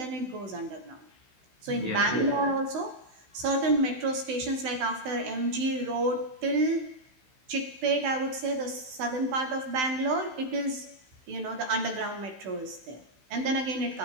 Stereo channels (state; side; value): late; left; 16 ms